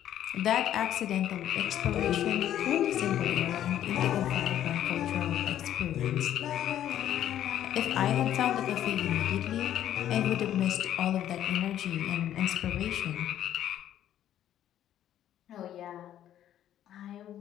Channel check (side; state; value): right; quieter; 11.4 dB